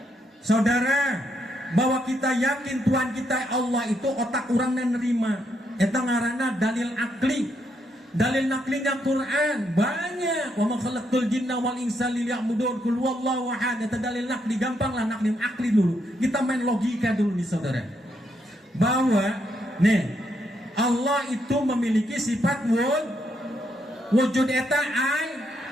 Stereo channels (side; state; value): both; normal; correlation 0.77